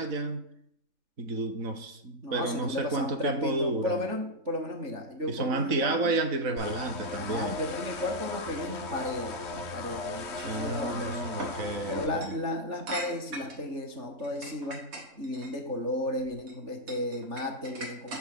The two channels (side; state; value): left; late; 3.6 ms